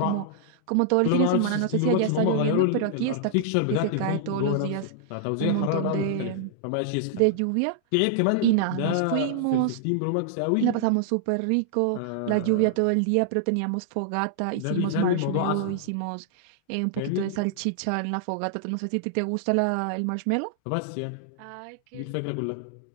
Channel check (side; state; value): both; different; correlation -0.01